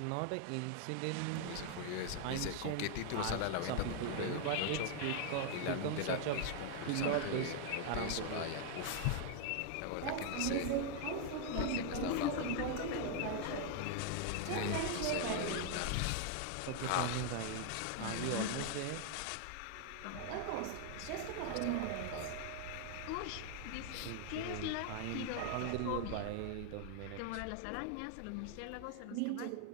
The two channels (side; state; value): both; different; correlation 0.00